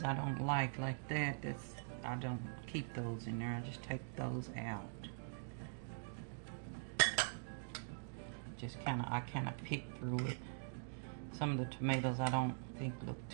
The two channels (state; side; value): silent; left; digital silence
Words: I don't like that. I don't keep those in there. I just take those out. I kind of pick through it. Some of the tomatoes I don't think look